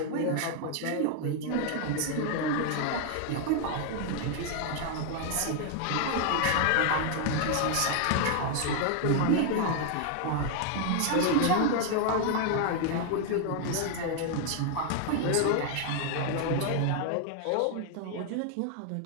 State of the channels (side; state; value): both; different; correlation 0.00